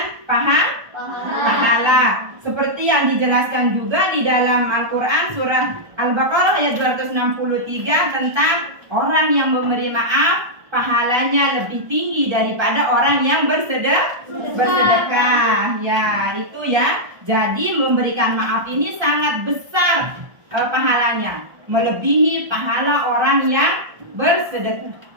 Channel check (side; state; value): left; late; 1.3 ms